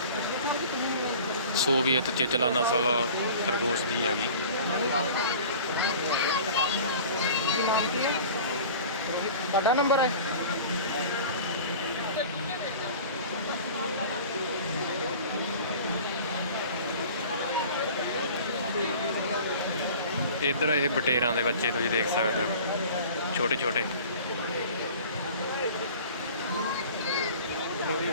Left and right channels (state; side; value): inverted; both; correlation -0.42